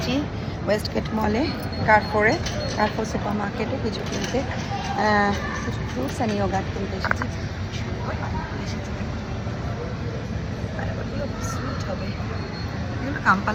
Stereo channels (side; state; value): both; identical; correlation 1.00